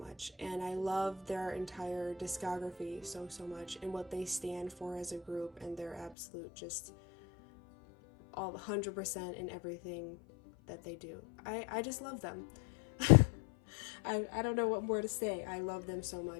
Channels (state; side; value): drops out; right; at 6.2 s